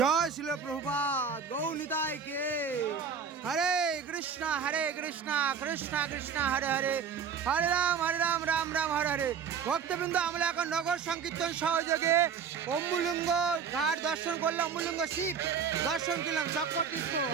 শিল প্রভুপাদ গৌ নিতাই কে। হরে কৃষ্ণ কৃষ্ণ কৃষ্ণ হরে হরে, হরে রাম রাম রাম হরে হরে। ভক্তবৃন্দ, আমরা এখন নগর সংকীর্তন সহযোগে অম্বুলিঙ্গ ঘাট দর্শন করলাম, অম্বুলিঙ্গ শিব দর্শন করলাম, চক্র তীর্থ।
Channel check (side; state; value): left; quieter; 6.6 dB